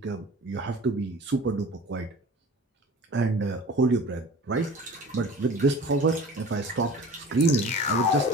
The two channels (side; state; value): both; normal; correlation 0.41